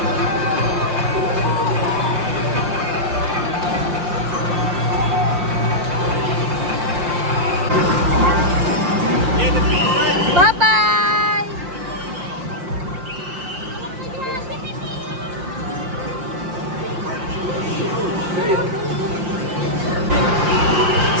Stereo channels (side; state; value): left; late; 5.7 ms